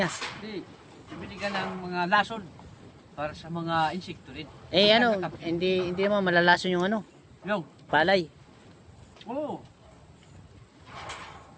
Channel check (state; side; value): identical; both; correlation 1.00